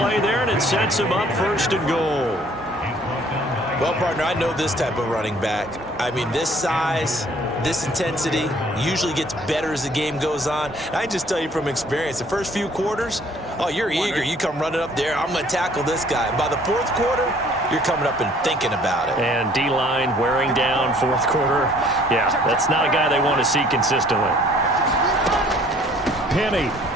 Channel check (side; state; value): both; normal; correlation 0.57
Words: there, and it sets him up 1st and goal. Well, partner, I know this type of running back. I mean, this size, this intensity usually gets better as the game goes on. And I just tell you from experience, the first few quarters, oh, you're eager. You come running up there, I'm going to tackle this guy. And by the 4th quarter, you're coming up and thinking about it. And D-line wearing down 4th quarter. Yeah, that's not a guy they want to see consistently. Penny.